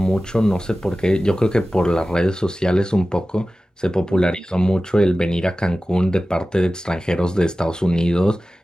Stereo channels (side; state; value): both; normal; correlation 0.96